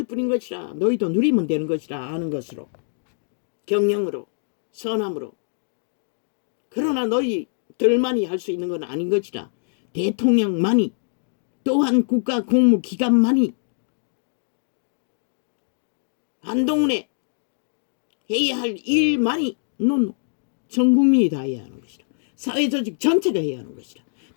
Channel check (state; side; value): silent; right; digital silence